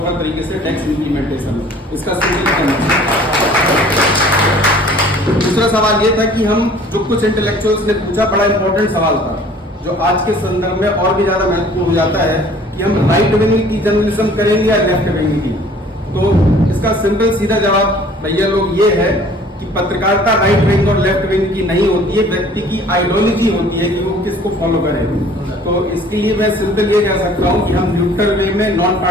तरीके से टैक्स इम्प्लीमेंटेशन हो, इसका दूसरा सवाल ये था कि हम जो कुछ इंटेलेक्चुअल्स ने पूछा, बड़ा इंपॉर्टेंट सवाल था जो आज के संदर्भ में और भी ज्यादा महत्वपूर्ण हो जाता है कि हम राइट विंग की जर्नलिज्म करेंगे या लेफ्ट विंग की। तो इसका सिंपल सीधा जवाब भैया लोग ये है कि पत्रकारिता राइट विंग और लेफ्ट विंग की नहीं होती है, व्यक्ति की आइडियोलॉजी होती है कि वो किसको फॉलो करे। तो इसके लिए मैं सिंपल ये कह सकता हूँ कि हम न्यूट्रल वे में नॉन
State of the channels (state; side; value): normal; both; correlation 0.52